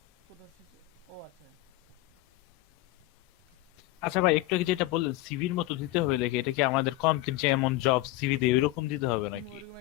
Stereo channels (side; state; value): right; quieter; 17.8 dB